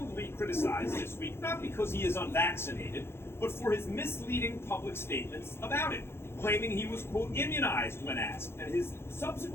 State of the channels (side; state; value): right; late; 0.12 ms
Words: criticized this week, not because he is unvaccinated, but for his misleading public statements about it, claiming he was, quote, immunized when asked, and his